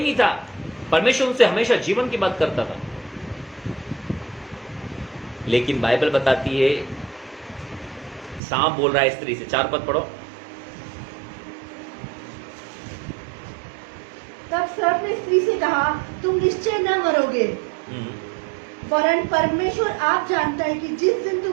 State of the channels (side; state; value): left; drops out; at 8.4 s